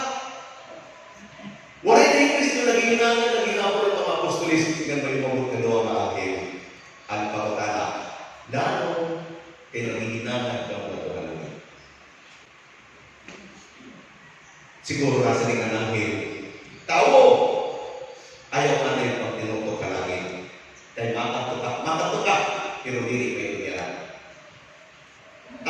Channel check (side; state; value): both; identical; correlation 1.00